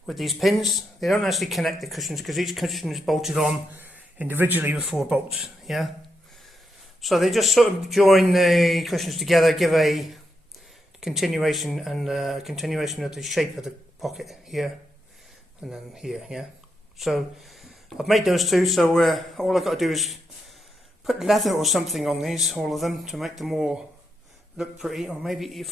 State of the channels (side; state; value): both; normal; correlation 0.83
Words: with these pins, they don't actually connect the cushions, because each cushion is bolted on individually with 4 bolts. Yeah, so they just sort of join the cushions together, give a continuation and continuation of the shape of the pocket here and then here. Yeah. So I've made those two. So all I've got to do is put leather or something on these, all of them, to make them all look pretty. Or maybe you